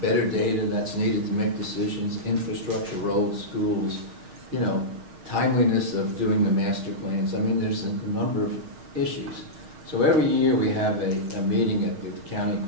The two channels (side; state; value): left; late; 6.5 ms